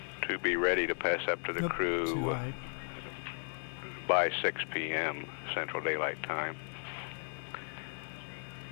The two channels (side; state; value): right; silent; digital silence